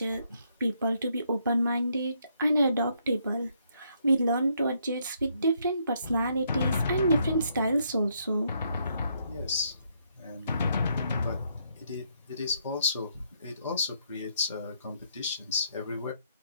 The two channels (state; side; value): inverted; both; correlation -0.73